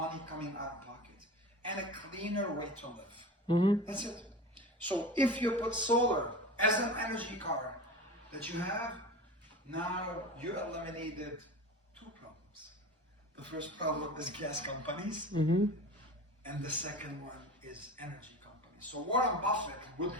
coming out of pocket and a cleaner way to live. That's it. So if you put solar as an energy car that you have, now you eliminated 2 problems. The first problem is gas companies, and the second one is energy companies. So Warren Buffett would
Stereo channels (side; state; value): both; normal; correlation 0.32